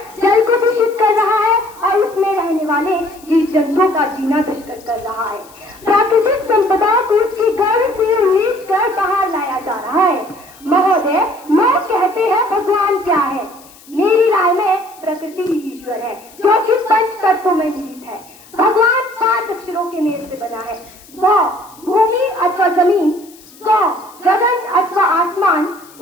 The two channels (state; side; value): noise; left; hiss, 24 dB below the sound